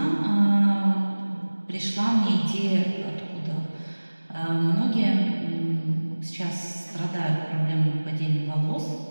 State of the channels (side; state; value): both; inverted; correlation -1.00